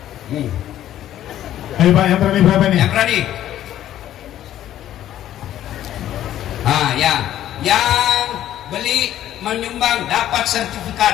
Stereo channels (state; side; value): quieter; right; 12.2 dB